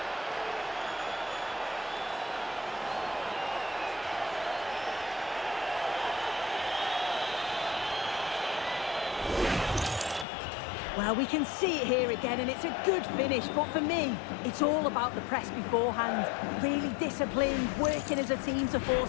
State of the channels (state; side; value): drops out; right; at 10.2 s